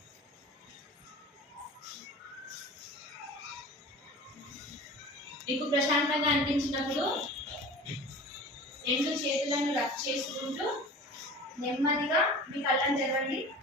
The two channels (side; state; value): both; normal; correlation 0.38